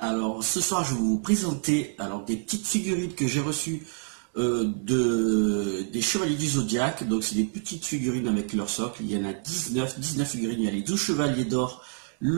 Alors ce soir je vais vous présenter des petites figurines que j'ai reçues des Chevaliers du Zodiaque. Donc c'est des petites figurines avec leur socle. Il y en a 19 figurines. Il y a les 12 Chevaliers d'or,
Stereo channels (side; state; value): left; silent; 57 dB below the other